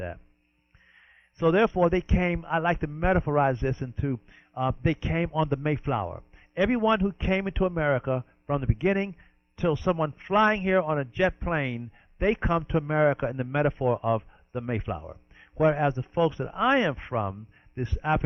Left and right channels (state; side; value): identical; both; correlation 1.00